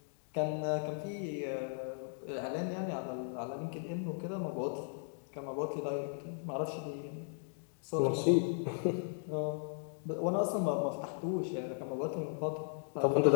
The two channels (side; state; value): right; silent; digital silence